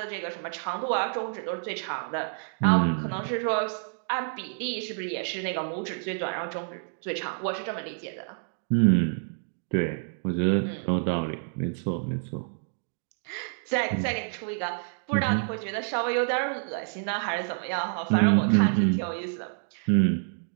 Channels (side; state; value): left; silent; digital silence